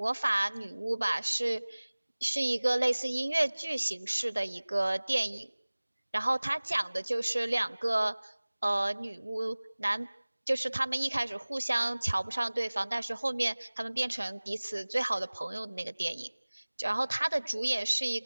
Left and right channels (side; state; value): both; inverted; correlation -1.00